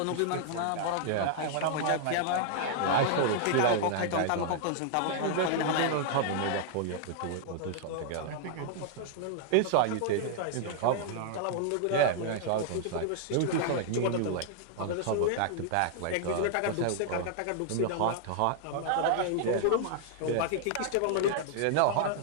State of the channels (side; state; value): both; different; correlation -0.01